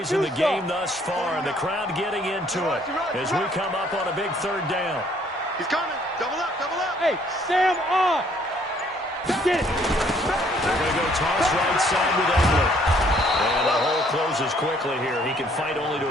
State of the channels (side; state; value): both; normal; correlation 0.63